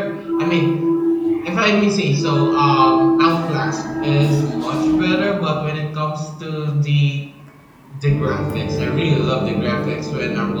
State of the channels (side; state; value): both; identical; correlation 1.00